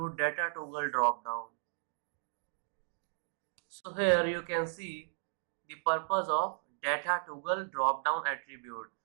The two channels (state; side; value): silent; left; digital silence